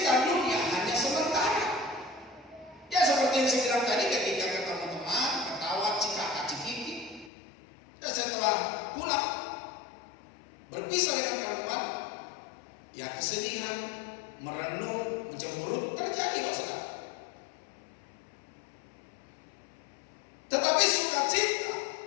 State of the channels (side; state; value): right; drops out; at 7.3 s